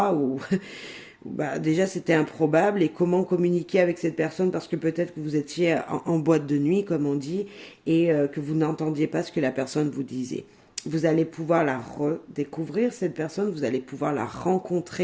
où... déjà c'était improbable et comment communiquer avec cette personne parce que peut-être que vous étiez en boîte de nuit comme on dit et que vous n'entendiez pas ce que la personne vous disait. Vous allez pouvoir la redécouvrir cette personne, vous allez pouvoir la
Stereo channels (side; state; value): both; identical; correlation 1.00